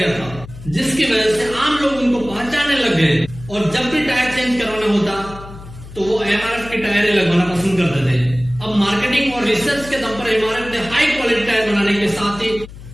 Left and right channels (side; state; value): left; noise; hum, 16 dB below the sound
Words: था, जिसकी वजह से आम लोग उनको पहचानने लग गए और जब भी टायर चेंज करवाना होता तो वो एमआरएफ के टायर लगवाना पसंद करते थे। अब मार्केटिंग और रिसर्च के दम पर एमआरएफ ने हाई क्वालिटी टायर बनाने के साथ ही